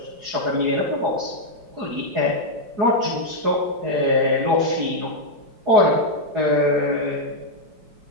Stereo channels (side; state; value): left; late; 5.1 ms